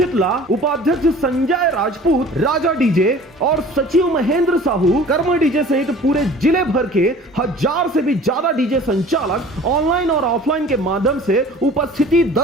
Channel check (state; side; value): normal; both; correlation 0.45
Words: उपाध्यक्ष संजय राजपूत, राजा डीजे और सचिव महेंद्र साहू, कर्म डीजे सहित पूरे जिले भर के 1000 से भी ज्यादा डीजे संचालक ऑनलाइन और ऑफलाइन के माध्यम से उपस्थिति